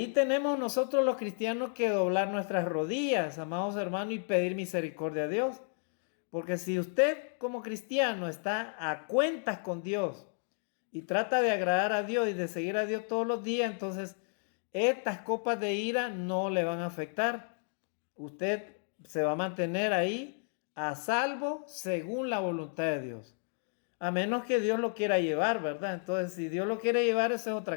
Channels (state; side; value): silent; right; 56 dB below the other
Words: tenemos nosotros los cristianos que doblar nuestras rodillas, amados hermanos, y pedir misericordia a Dios. Porque si usted como cristiano está a cuentas con Dios y trata de agradar a Dios y de seguir a Dios todos los días, entonces estas copas de ira no le van a afectar. Usted se va a mantener ahí a salvo según la voluntad de Dios. A menos que Dios lo quiera llevar, ¿verdad? Entonces, si Dios lo quiere llevar, eso es